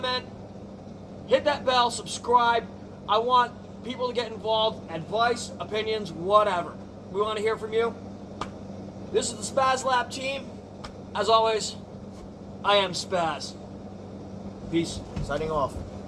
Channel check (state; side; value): identical; both; correlation 1.00